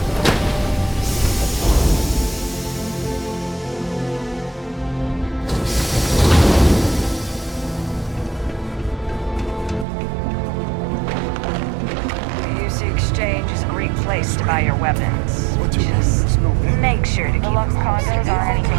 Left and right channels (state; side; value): drops out; left; at 9.9 s